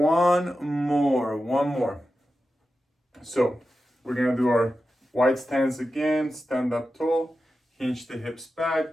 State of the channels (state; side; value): normal; both; correlation 0.91